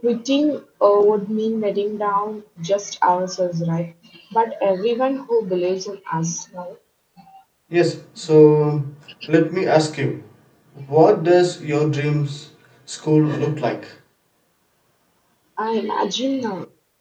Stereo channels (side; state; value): both; identical; correlation 1.00